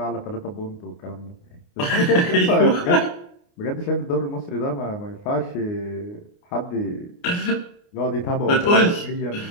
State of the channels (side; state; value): right; late; 29 ms